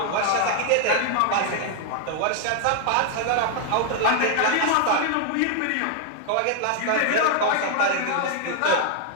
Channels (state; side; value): different; both; correlation 0.00